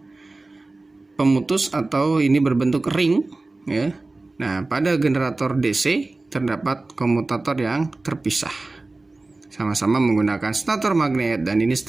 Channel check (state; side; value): quieter; left; 3.2 dB